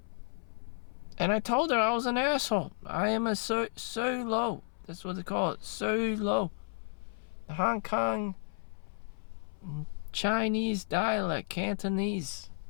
And I told her I was an asshole. I am a solo. That's what they call it. Solo. The Hong Kong Chinese dialect, Cantonese.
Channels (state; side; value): silent; right; 56 dB below the other